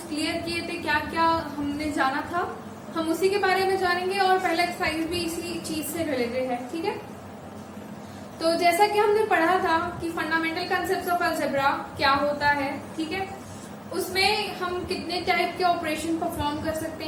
क्लियर किए थे, क्या क्या हमने जाना था, हम उसी के बारे में जानेंगे और पहला एक्सरसाइज भी इसी चीज से रिलेटेड है। ठीक है, तो जैसा कि हमने पढ़ा था कि फंडामेंटल कंसेप्ट्स ऑफ अलजेब्रा क्या होता है, ठीक है, उसमें हम कितने टाइप के ऑपरेशन परफॉर्म कर सकते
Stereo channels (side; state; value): both; identical; correlation 1.00